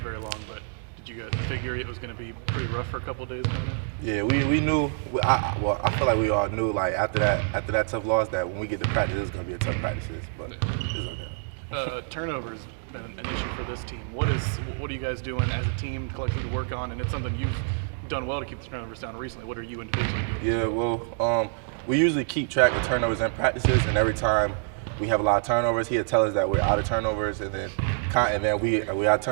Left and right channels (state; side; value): silent; left; digital silence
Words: long, but did you guys figure it was going to be pretty rough for a couple of days coming in? Yeah, we knew. I feel like we all knew, like, after that tough loss, that when we get to practice, it's going to be a tough practice. But it's okay. Turnovers been an issue for this team. What are you guys doing as a team collectively to work on? And it's something you've done well to keep the turnovers down recently. What are you individually doing? Yeah, well, we usually keep track of turnovers in practices, and every time we have a lot of turnovers, he'll tell us that we're out of turnovers, and then we out of